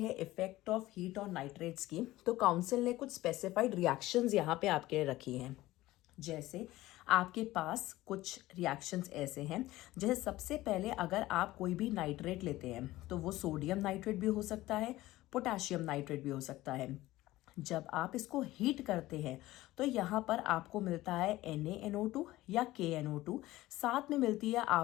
effect of heat on nitrates की, तो काउंसिल ने कुछ स्पेसिफाइड रिएक्शंस यहाँ पे आपके लिए रखी हैं। जैसे आपके पास कुछ रिएक्शंस ऐसे हैं, जैसे सबसे पहले अगर आप कोई भी नाइट्रेट लेते हैं तो वो सोडियम नाइट्रेट भी हो सकता है, पोटेशियम नाइट्रेट भी हो सकता है। जब आप इसको हीट करते हैं तो यहाँ पर आपको मिलता है NaNO2 या KNO2, साथ में मिलती है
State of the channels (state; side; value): quieter; right; 17.1 dB